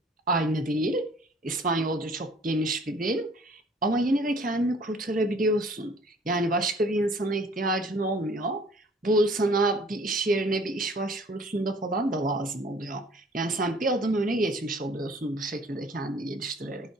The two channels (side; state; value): both; normal; correlation 0.54